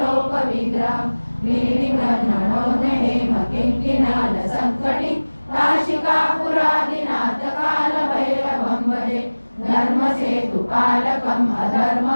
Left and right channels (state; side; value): inverted; both; correlation -1.00